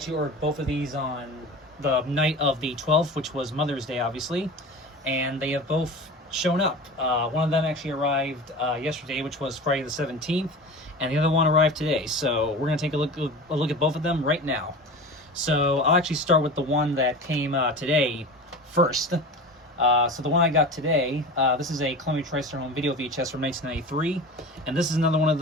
ordered both of these on the night of the 12th, which was Mother's Day, obviously, and they have both shown up. One of them actually arrived yesterday, which was Friday the 17th, and the other one arrived today. So we're going to take a look at both of them right now. So I'll actually start with the one that came today first. So the one I got today, this is a Columbia TriStar video VHS from 1993, and this is another one of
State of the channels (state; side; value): normal; both; correlation 0.33